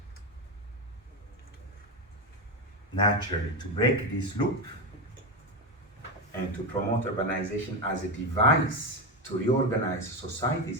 Naturally, to break this loop and to promote urbanization as a device to reorganize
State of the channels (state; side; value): normal; both; correlation 0.14